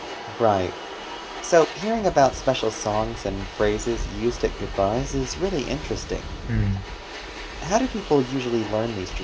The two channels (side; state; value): both; identical; correlation 1.00